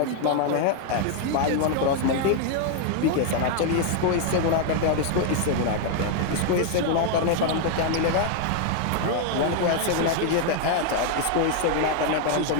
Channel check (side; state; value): both; different; correlation 0.00